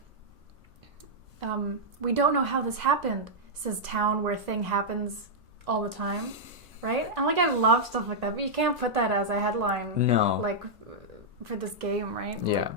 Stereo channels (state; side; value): normal; both; correlation -0.07